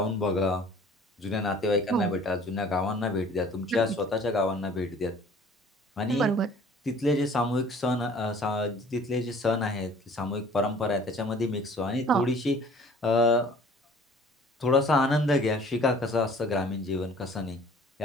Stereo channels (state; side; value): normal; both; correlation 0.51